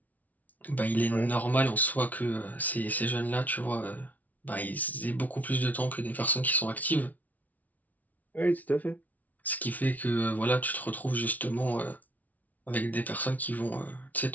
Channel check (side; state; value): right; late; 0.074 ms